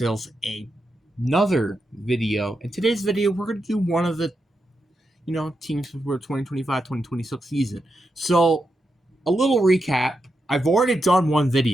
another video. In today's video, we're gonna do one of the teams for 2025-2026 season. So, a little recap. I've already done one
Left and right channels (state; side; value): normal; both; correlation 0.86